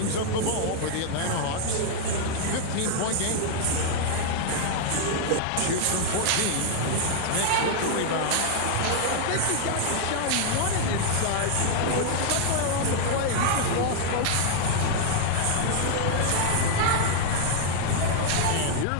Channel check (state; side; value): different; both; correlation 0.00